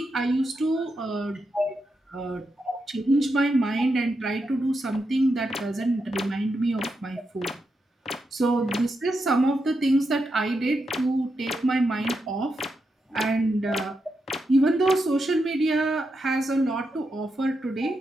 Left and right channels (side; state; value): both; normal; correlation 0.85